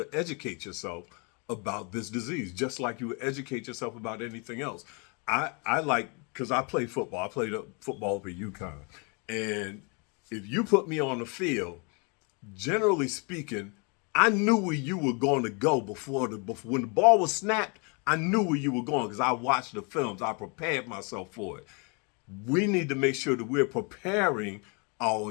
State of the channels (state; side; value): quieter; right; 33.5 dB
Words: educate yourself about this disease, just like you would educate yourself about anything else. I like, because I play football. I played football for UConn. And if you put me on the field, generally speaking, I knew where you were going to go before when the ball was snapped. I knew where you were going because I watched the films. I prepared myself for it. We need to make sure that we're preparing